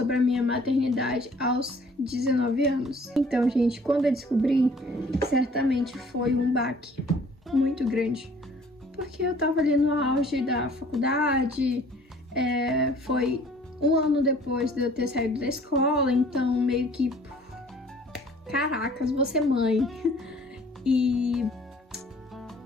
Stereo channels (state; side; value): normal; both; correlation 0.54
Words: a minha maternidade aos 19 anos. Então, gente, quando eu descobri, certamente foi um baque muito grande, porque eu tava ali no auge da faculdade, foi um ano depois de eu ter saído da escola, então meio que, caracas, vou ser mãe. E